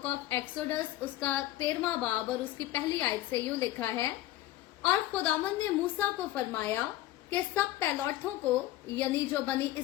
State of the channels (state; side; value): quieter; right; 15.1 dB